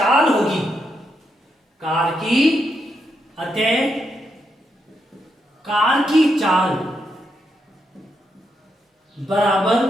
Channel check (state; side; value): normal; both; correlation 0.81